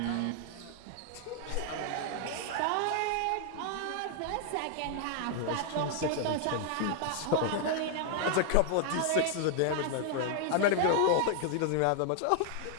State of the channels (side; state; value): both; different; correlation 0.00